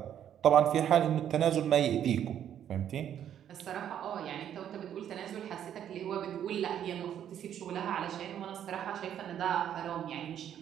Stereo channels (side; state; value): left; quieter; 9.9 dB